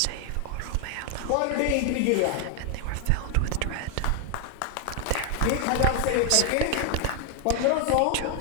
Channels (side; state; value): both; different; correlation 0.01